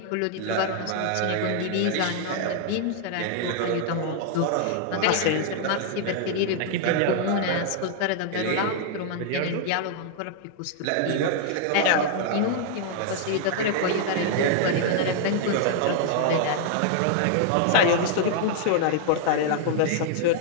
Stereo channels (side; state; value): both; different; correlation 0.00